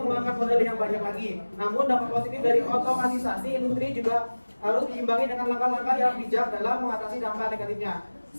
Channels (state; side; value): inverted; both; correlation -1.00